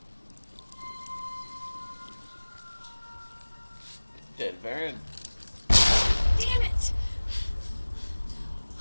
Dead Baron. Damn it!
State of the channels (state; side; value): inverted; both; correlation -1.00